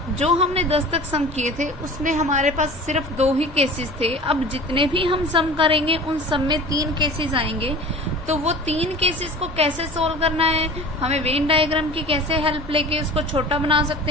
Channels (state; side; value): normal; both; correlation 0.39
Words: जो हमने 10 तक सम किए थे उसमें हमारे पास सिर्फ 2 ही केसेस थे। अब जितने भी हम सम करेंगे उन सब में 3 केसेस आएंगे, तो वो 3 केसेस को कैसे सोल्व करना है, हमें वेन डायग्राम की कैसे हेल्प लेके उसको छोटा बना